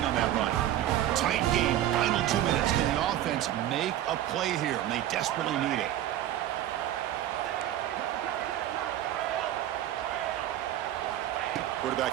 on that run. Tight game, final 2 minutes. Can the offense make a play here? And they desperately need it. Quarterback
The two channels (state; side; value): quieter; left; 12.5 dB